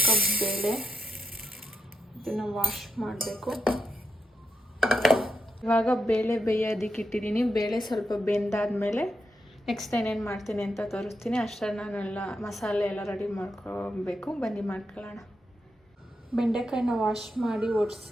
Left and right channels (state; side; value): normal; both; correlation 0.84